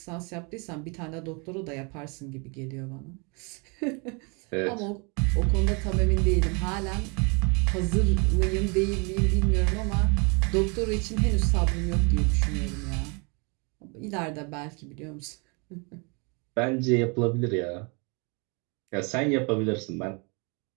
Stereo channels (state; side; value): quieter; left; 32.6 dB